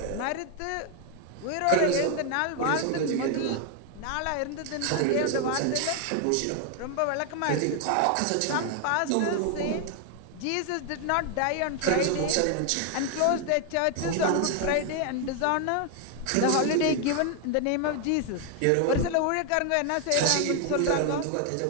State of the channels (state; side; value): different; both; correlation 0.00